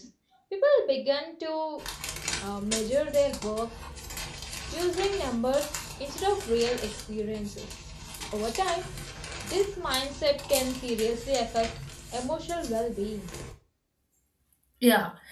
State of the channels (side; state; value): both; identical; correlation 1.00